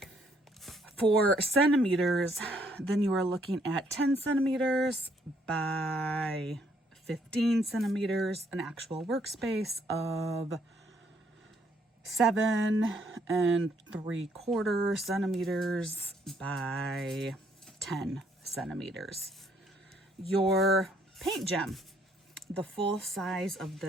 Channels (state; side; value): normal; both; correlation 0.68